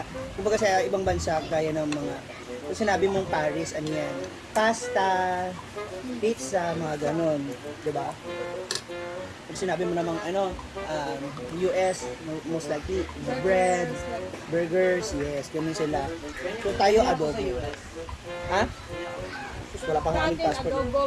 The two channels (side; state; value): both; identical; correlation 1.00